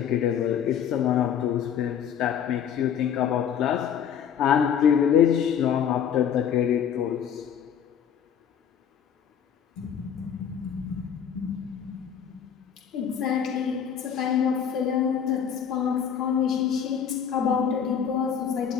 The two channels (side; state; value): right; quieter; 8.3 dB